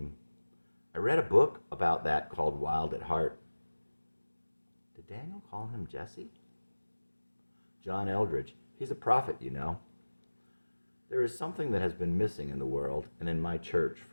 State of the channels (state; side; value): inverted; both; correlation -1.00